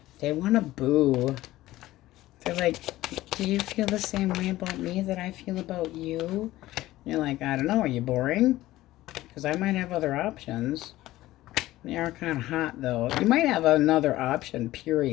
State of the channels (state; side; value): quieter; right; 16.2 dB